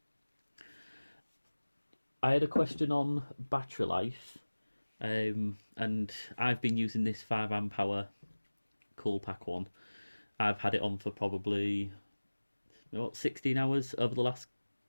I had a question on battery life, and I've been using this 5 amp hour cool pack one. I've had it on for probably 16 hours over the last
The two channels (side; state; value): both; inverted; correlation -1.00